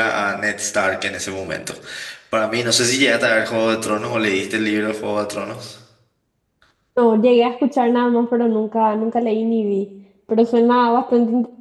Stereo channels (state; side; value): identical; both; correlation 1.00